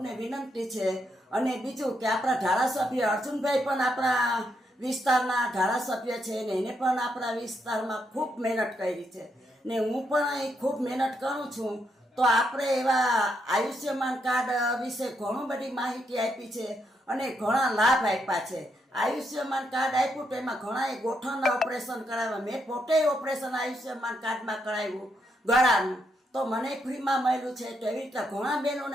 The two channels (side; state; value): both; normal; correlation 0.79